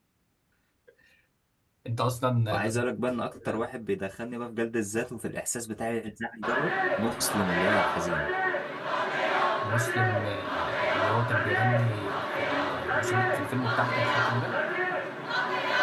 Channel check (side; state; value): both; identical; correlation 1.00